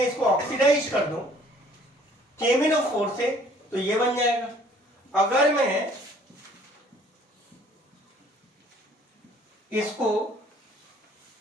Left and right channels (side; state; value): both; normal; correlation 0.57